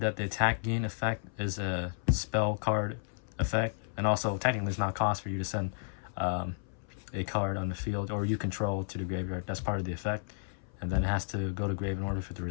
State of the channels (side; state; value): right; silent; 56 dB below the other